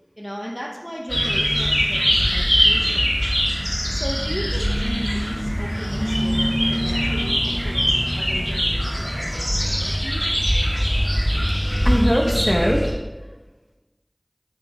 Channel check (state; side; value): identical; both; correlation 1.00